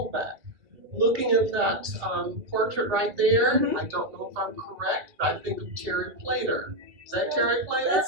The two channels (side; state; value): left; late; 2.7 ms